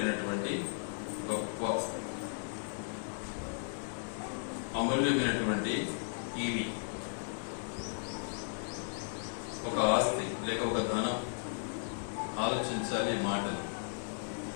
గొప్ప అమూల్యమైనటువంటి ఈవి. ఒక ఆస్తి లేక ఒక ధనం. ఆలోచించాలి. మాటలు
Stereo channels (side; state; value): right; silent; digital silence